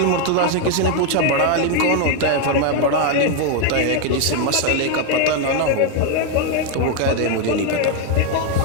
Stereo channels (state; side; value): different; both; correlation 0.01